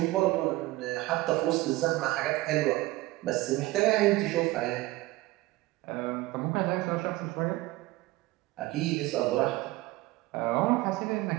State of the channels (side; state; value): left; quieter; 19.1 dB